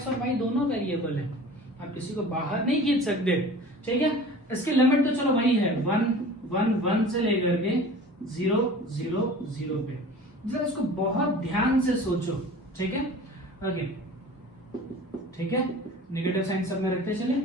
और y दोनों वेरिएबल है, आप किसी को बाहर नहीं खींच सकते। ठीक है, इसकी लिमिट तो चलो वही है 1 1 1 से लेकर के 0 0 0 पे। जरा इसको बहुत ध्यान से सोचो। ठीक है, ओके ठीक है, नेगेटिव साइन सब में रखते चले।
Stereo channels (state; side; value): normal; both; correlation 0.41